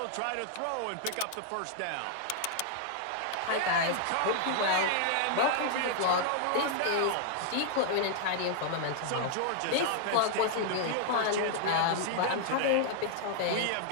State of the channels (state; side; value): different; both; correlation -0.01